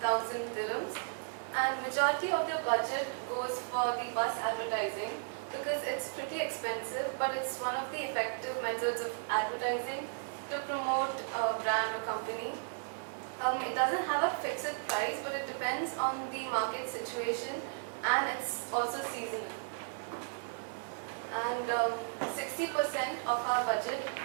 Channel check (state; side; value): silent; left; digital silence